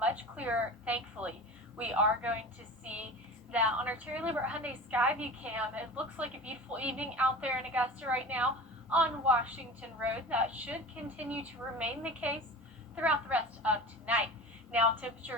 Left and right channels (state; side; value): normal; both; correlation 0.34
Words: clearer, thankfully. We are going to see that on our Terry Lambert Hyundai Skyview cam. It looks like a beautiful evening out there in Augusta right now on Washington Road. That should continue to remain the case throughout the rest of tonight. Now,